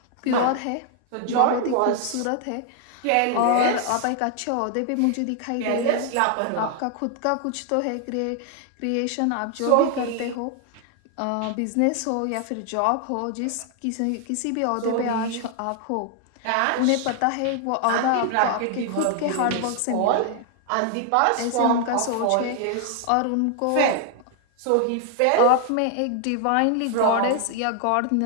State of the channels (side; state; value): both; different; correlation 0.00